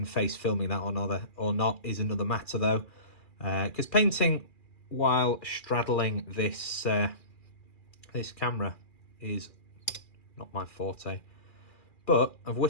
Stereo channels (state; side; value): late; right; 2.4 ms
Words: face filming that or not is another matter, though, because painting while straddling this this camera is not my forte. But I've